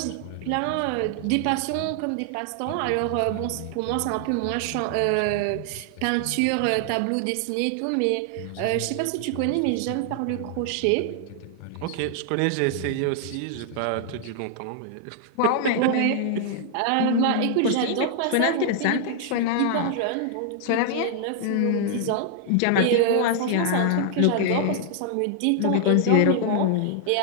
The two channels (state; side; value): different; both; correlation 0.00